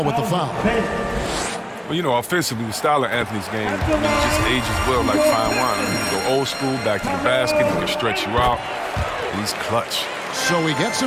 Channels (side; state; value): both; identical; correlation 1.00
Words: with the foul. Well, you know, offensively, the style of Anthony's game, it just ages well like fine wine. I mean, he can go old school, back to the basket, he can stretch you out, and he's clutch. So he gets